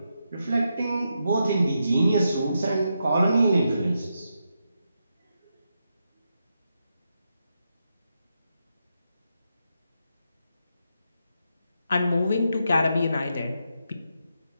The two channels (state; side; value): inverted; both; correlation -0.84